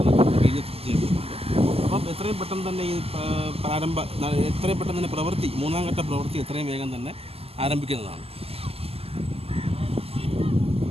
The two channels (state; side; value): late; left; 0.29 ms